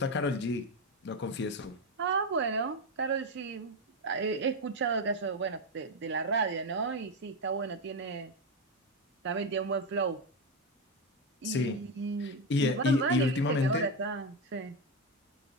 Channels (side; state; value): both; normal; correlation 0.11